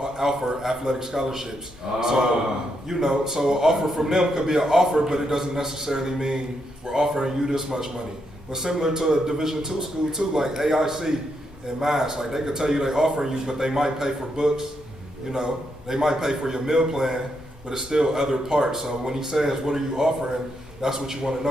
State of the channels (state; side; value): normal; both; correlation 0.80